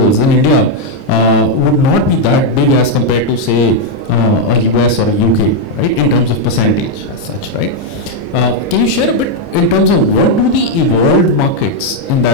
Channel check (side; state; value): right; late; 30 ms